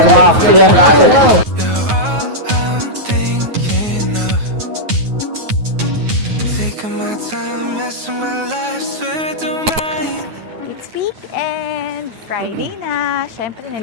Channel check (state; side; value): late; left; 9.4 ms